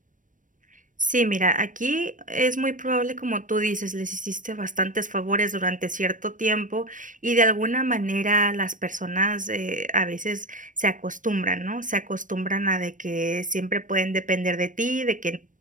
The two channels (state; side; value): late; left; 0.38 ms